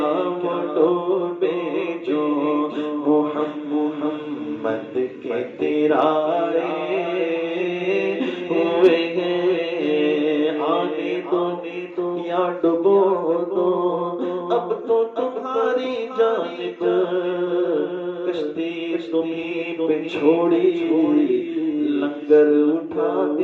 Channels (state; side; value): identical; both; correlation 1.00